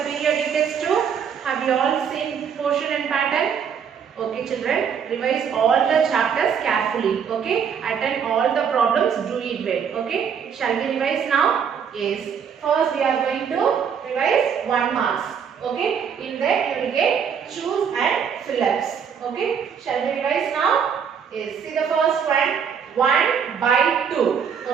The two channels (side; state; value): left; quieter; 7.3 dB